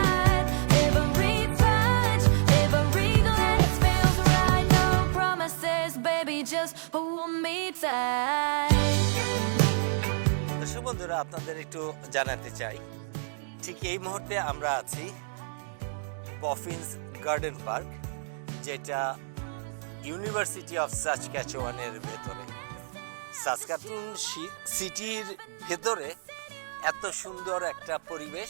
Every touch, every glance feels right. No promises, baby, just hold me tight. দর্শক বন্ধুরা, আপনাদের একটু জানাতে চাই, ঠিক এই মুহূর্তে আমরা আছি বফিন্স গার্ডেন পার্ক, যেটা ইউনিভার্সিটি অফ সাসক্যাচুয়ানের ভেতরে। সাসকাটুন সিটির ভেতরে এত সুন্দর একটা পরিবেশ,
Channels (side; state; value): left; silent; digital silence